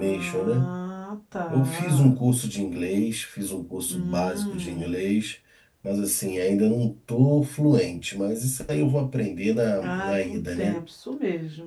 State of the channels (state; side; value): identical; both; correlation 1.00